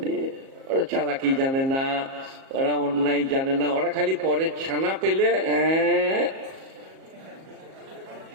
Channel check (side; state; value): left; late; 37 ms